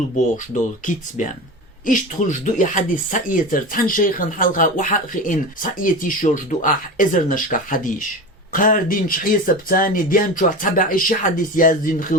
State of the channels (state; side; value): normal; both; correlation 0.28